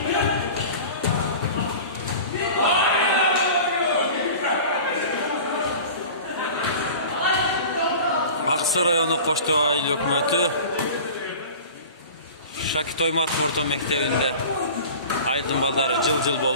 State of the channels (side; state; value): both; inverted; correlation -0.38